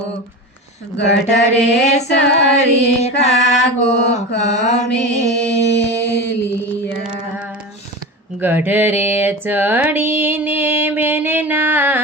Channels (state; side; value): normal; both; correlation 0.27